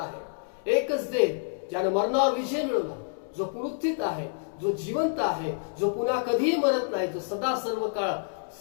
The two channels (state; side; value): silent; right; digital silence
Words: एकच देव ज्याने मरणावर विजय मिळवला, जो पुनरुत्थित आहे, जो जिवंत आहे, जो पुन्हा कधीही मरत नाही, जो सदा सर्व काळ